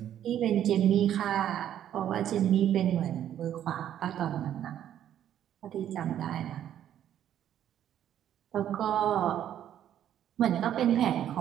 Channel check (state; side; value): quieter; left; 10.7 dB